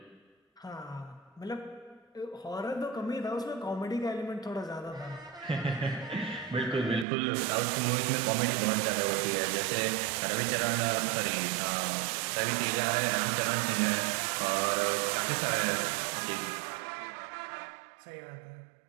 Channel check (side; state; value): left; drops out; at 7.1 s